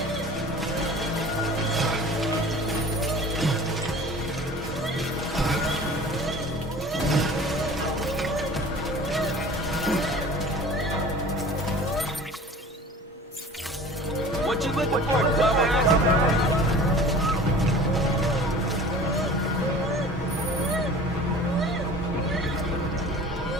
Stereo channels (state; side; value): normal; both; correlation 0.42